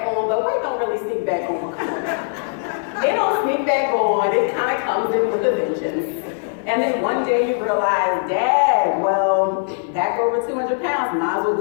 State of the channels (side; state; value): right; silent; digital silence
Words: on, but weight don't really sneak back on. It don't sneak back on. It kind of comes in with a vengeance. And then one day you realize, Dad, well, back over 200 pounds, might as well